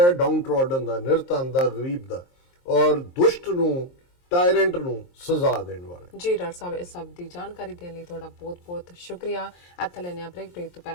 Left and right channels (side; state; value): right; late; 23 ms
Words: ਡਾਊਨ ਟ੍ਰੋਡਨ ਦਾ, ਨਿਰਧਨ ਦਾ, ਗਰੀਬ ਦਾ, ਔਰ ਦੁਸ਼ਟ ਨੂੰ, ਟਾਇਰੈਂਟ ਨੂੰ ਸਜ਼ਾ ਦੇਣ ਵਾਲਾ। ਜੀ ਡਾਕਟਰ ਸਾਹਿਬ, ਇਸ ਸਭ ਦੀ ਜਾਣਕਾਰੀ ਦੇਣ ਲਈ ਤੁਹਾਡਾ ਬਹੁਤ-ਬਹੁਤ ਸ਼ੁਕਰੀਆ। ਇੱਥੇ ਲੈਣੇ ਆ ਬ੍ਰੇਕ ਤੋਂ